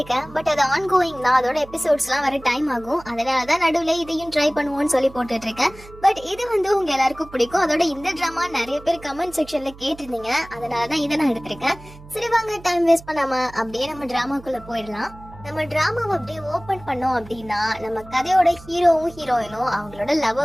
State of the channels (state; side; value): noise; right; hum, 19 dB below the sound